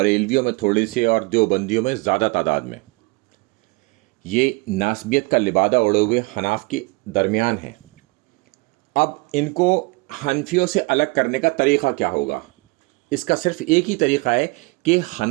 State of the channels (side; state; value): left; quieter; 27.3 dB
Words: میں تھوڑے سے اور دیوبندیوں میں زیادہ تعداد میں۔ یہ ناسبیت کا لبادہ اڑے ہوئے حناف کے درمیان ہیں۔ اب ان کو حنفیوں سے الگ کرنے کا طریقہ کیا ہوگا؟ اس کا صرف ایک ہی طریقہ ہے کہ